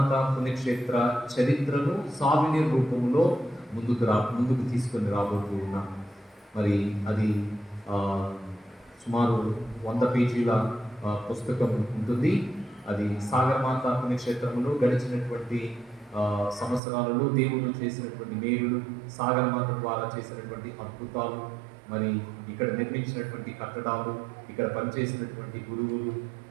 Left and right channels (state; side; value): drops out; left; at 16.8 s